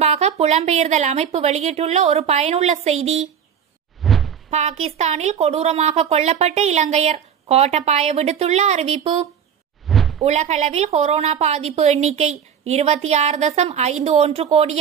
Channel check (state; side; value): quieter; left; 8.0 dB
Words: புலம்பெயர்தல் அமைப்பு வெளியிட்டுள்ள ஒரு பயனுள்ள செய்தி. பாகிஸ்தானில் கொடூரமாக கொல்லப்பட்ட இலங்கையர், கோட்டபாய விடுத்துள்ள அறிவிப்பு. உலகளவில் கொரோனா பாதிப்பு எண்ணிக்கை 26.51